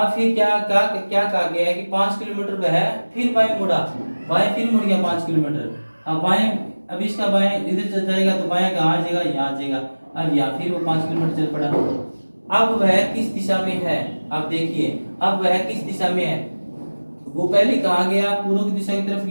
फिर क्या कहा गया है कि 5 किलोमीटर वह है, फिर बाएं मुड़ा, बाएं फिर मुड़ गया 5 किलोमीटर। अब बाएं, अब इसका बाएं इधर जाएगा तो बाएं कहाँ आ जाएगा, यहाँ आ जाएगा। अब यहाँ फिर वो 5 किलोमीटर चल पड़ा। अब वह किस दिशा में है, अब देखिए अब वह किस दिशा में है, वो पहले कहाँ गया, पूर्व की दिशा की तरफ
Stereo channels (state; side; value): inverted; both; correlation -1.00